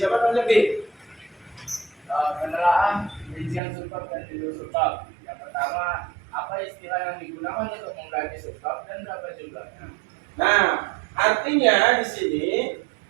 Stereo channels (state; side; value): drops out; left; at 3.6 s